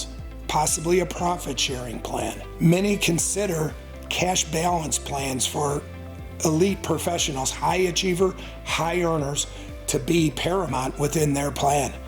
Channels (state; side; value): identical; both; correlation 1.00